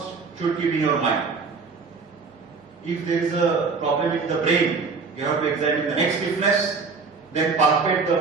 should keep in your mind. If there is a problem in the brain, you have to examine the neck stiffness, then palpate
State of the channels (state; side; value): quieter; left; 4.7 dB